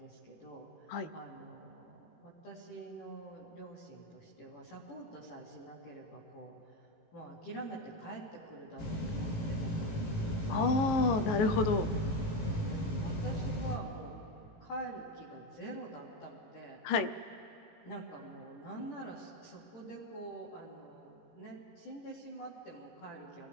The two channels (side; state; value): right; late; 19 ms